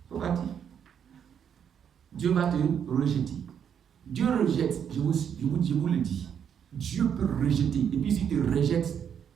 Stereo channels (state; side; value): quieter; left; 8.2 dB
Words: Pourquoi dire? Dieu va te rejeter. Dieu rejette, je vous le dis. Dieu peut rejeter. Et puis s'il te rejette,